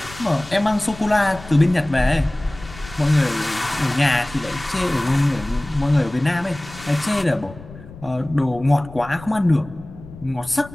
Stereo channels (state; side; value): noise; left; rumble, 17 dB below the sound